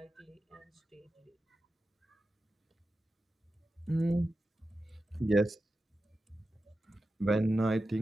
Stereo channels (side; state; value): both; normal; correlation 0.91